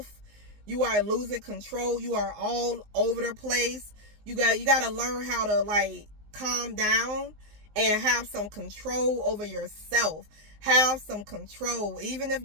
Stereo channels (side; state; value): left; late; 19 ms